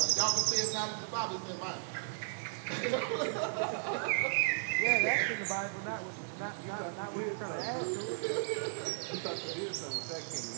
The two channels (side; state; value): left; silent; digital silence